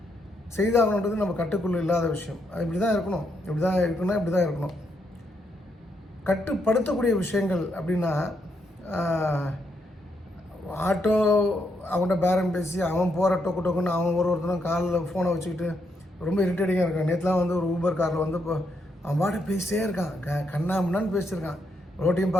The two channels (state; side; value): normal; both; correlation 0.78